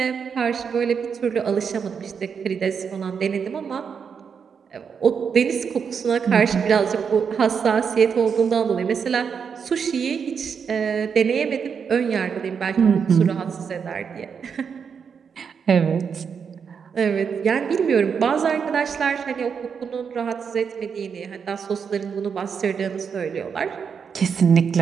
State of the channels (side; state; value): left; quieter; 6.6 dB